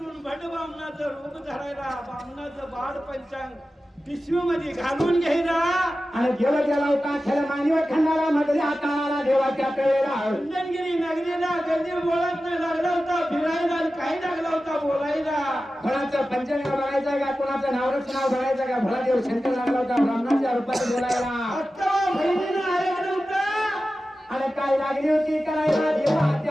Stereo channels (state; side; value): normal; both; correlation 0.94